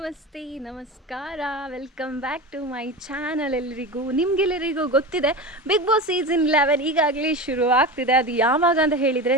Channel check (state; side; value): normal; both; correlation 0.27